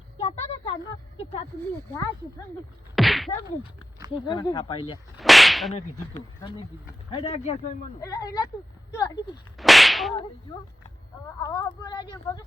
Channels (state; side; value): normal; both; correlation 0.92